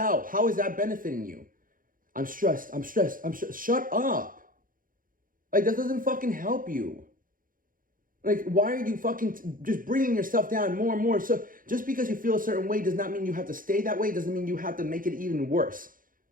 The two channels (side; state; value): left; late; 0.40 ms